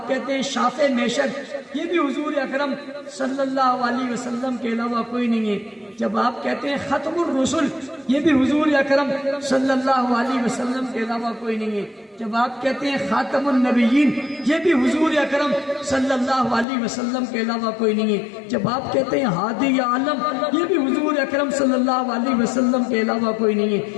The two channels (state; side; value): drops out; right; at 16.7 s